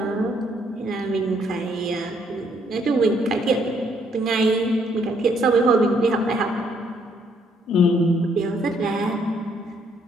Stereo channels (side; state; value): both; normal; correlation 0.69